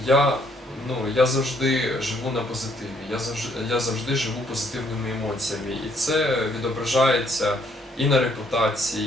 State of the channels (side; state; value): both; normal; correlation 0.67